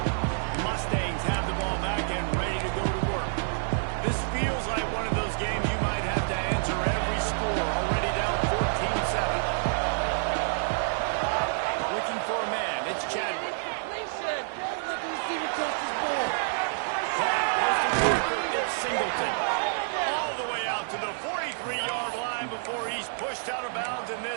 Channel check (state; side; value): silent; left; 59 dB below the other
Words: Mustangs have the ball back and ready to go to work. This feels like one of those games you might have to answer every score, already down 14-7. Looking for a man, it's Chadwick. It's Singleton. All the way out to the 43-yard line before he's pushed out of bounds, and